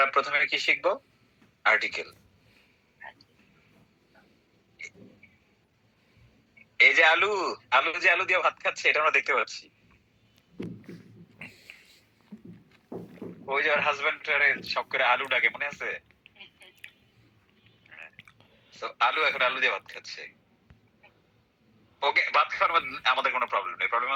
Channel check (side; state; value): both; identical; correlation 1.00